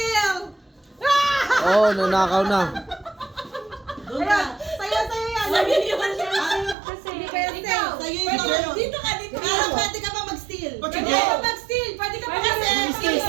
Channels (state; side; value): drops out; left; at 6.8 s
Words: Oh, nanakaw na. Doon ka. Sayo yan. Sabi niyo ba siya kasi? Ikaw. Sa'yo yung sa'yo. Dito ka, dito ka. Pero pwede ka pa mag-steal. Ba't Pwede sige? ka mag-steal. Pwede ka Kasi mag-steal.